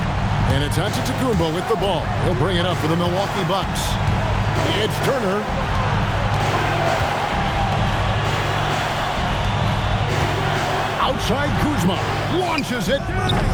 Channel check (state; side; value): identical; both; correlation 1.00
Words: And it's Antetokounmpo with the ball. He'll bring it up for the Milwaukee Bucks. It's Turner. Outside Kuzma. Launches it.